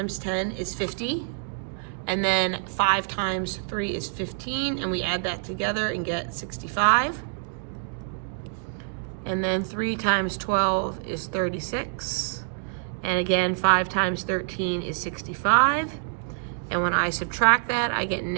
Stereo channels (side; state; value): left; silent; digital silence